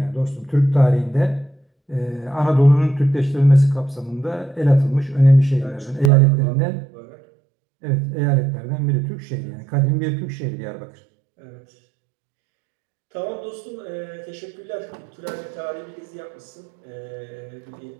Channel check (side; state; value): left; drops out; at 6.1 s